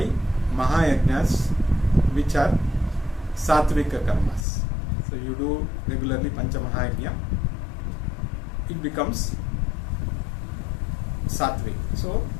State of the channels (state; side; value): drops out; right; at 4.5 s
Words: mahayajnas which are sattvika karmas. So you do regularly Pancha Mahayajna, it becomes sattvic. So